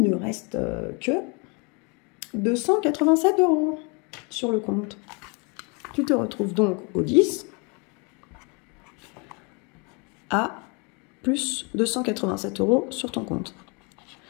ne reste que 287 € sur le compte. Tu te retrouves donc au 10 à plus 287 € sur ton compte.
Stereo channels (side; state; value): right; quieter; 32.1 dB